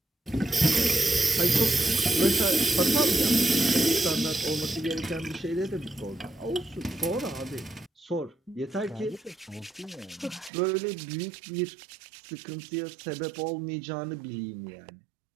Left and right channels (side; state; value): left; drops out; at 10.5 s